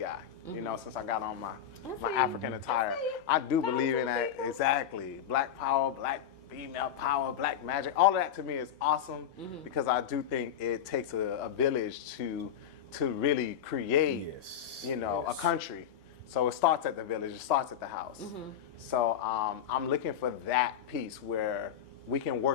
You know, since I got on my see. African attire, I see. I do Power believe to in the that. people. Exactly, black power, black female power, black magic. All of that to me is awesome because I do think it takes a village to really create, Yes. you know, yes. a country. So it starts at the village, it starts at the house. So I'm looking for that piece where we can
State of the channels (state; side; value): quieter; right; 9.3 dB